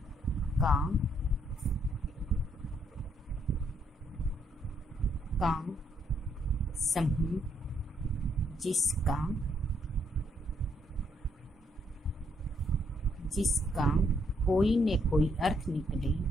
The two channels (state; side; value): normal; both; correlation 0.72